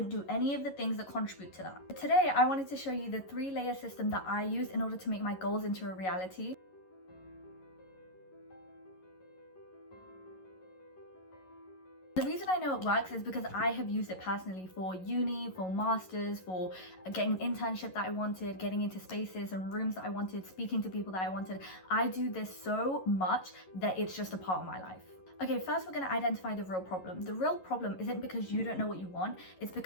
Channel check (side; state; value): right; late; 11 ms